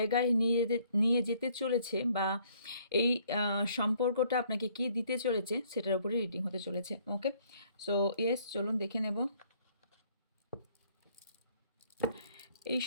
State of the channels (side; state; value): both; inverted; correlation -0.63